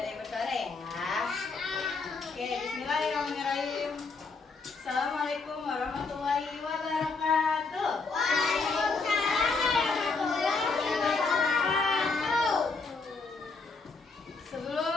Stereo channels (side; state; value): right; quieter; 4.2 dB